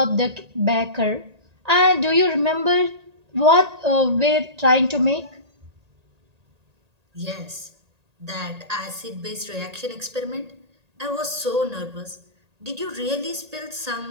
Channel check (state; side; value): late; left; 1.8 ms